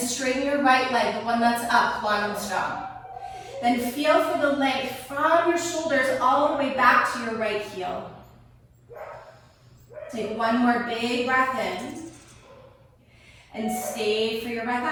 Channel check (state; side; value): identical; both; correlation 1.00